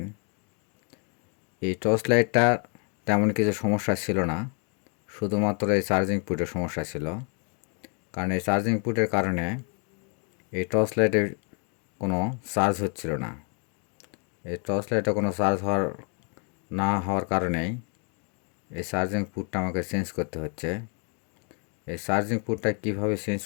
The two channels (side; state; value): right; quieter; 39.1 dB